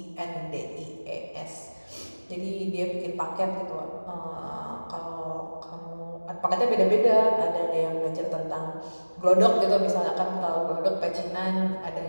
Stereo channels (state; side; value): inverted; both; correlation -1.00